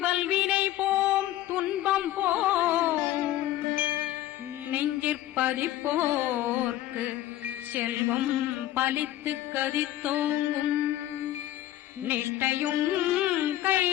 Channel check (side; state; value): right; quieter; 13.9 dB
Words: வல்வினை போம் துன்பம் போம் நெஞ்சிற்பதிப்போர்க்கு செல்வம் பலித்து கதித்தோங்கும் நிஷ்டையும்